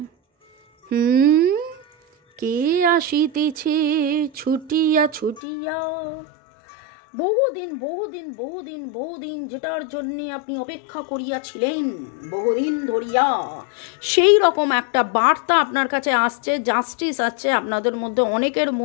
কে আসিতেছে ছুটিয়া বহুদিন যেটার জন্য আপনি অপেক্ষা করিয়াছিলেন বহুদিন ধরিয়া, সেই রকম একটা বার্তা আপনার কাছে আসছে। জাস্টিস আছে আপনাদের মধ্যে, অনেকের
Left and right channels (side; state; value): right; drops out; at 5.4 s